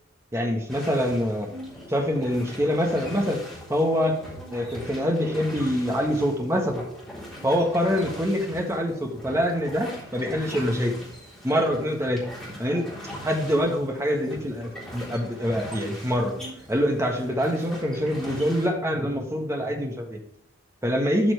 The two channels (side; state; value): both; normal; correlation 0.74